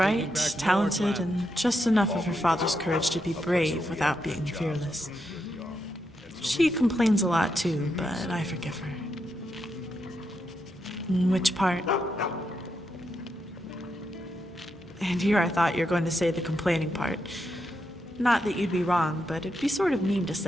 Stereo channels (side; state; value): both; normal; correlation 0.83